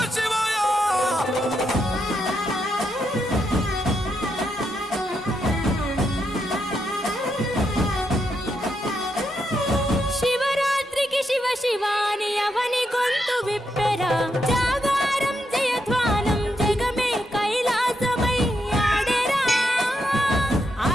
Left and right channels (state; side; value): normal; both; correlation 0.81